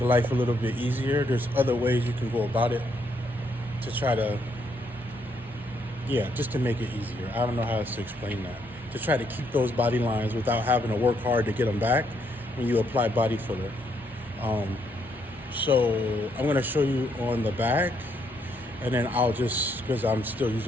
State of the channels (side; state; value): both; normal; correlation 0.74